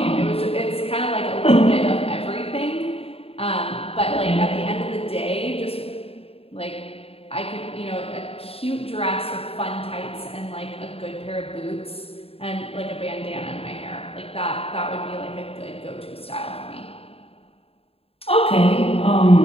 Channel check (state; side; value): late; right; 0.28 ms